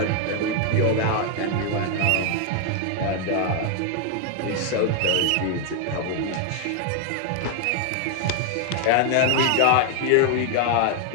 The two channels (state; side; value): different; both; correlation 0.00